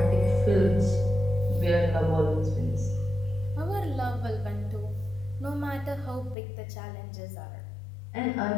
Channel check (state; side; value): drops out; right; at 6.4 s